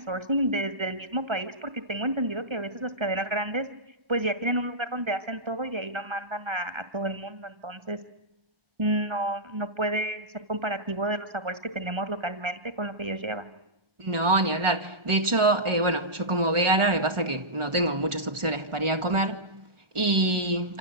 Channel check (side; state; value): left; late; 1.4 ms